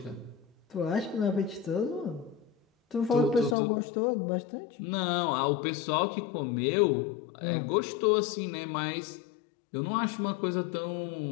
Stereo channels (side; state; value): right; drops out; at 3.6 s